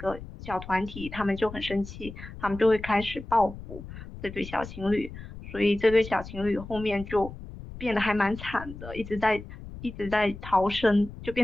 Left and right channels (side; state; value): left; noise; rumble, 13 dB below the sound